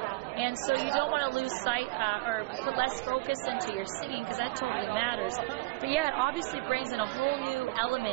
And so you don't want to lose sight or put less focus into your singing because that totally matters. But yeah, it obviously brings in a whole new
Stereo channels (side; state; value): left; quieter; 22.3 dB